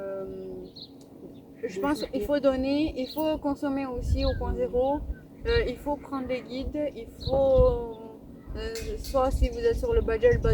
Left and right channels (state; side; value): identical; both; correlation 1.00